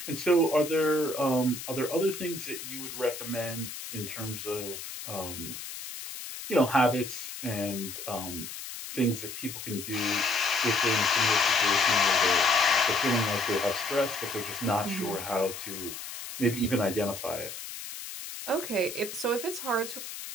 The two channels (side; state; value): left; noise; hiss, 9 dB below the sound